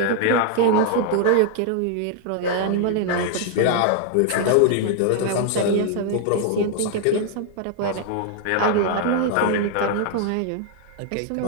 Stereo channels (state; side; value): different; both; correlation 0.00